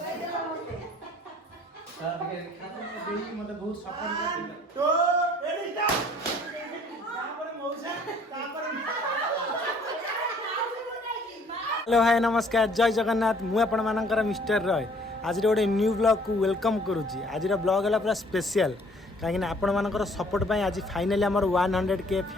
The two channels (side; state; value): both; normal; correlation 0.58